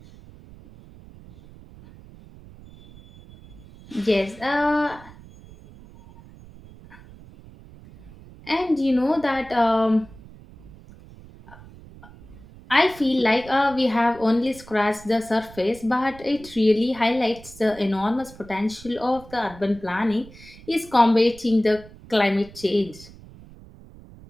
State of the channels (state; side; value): noise; right; rumble, 20 dB below the sound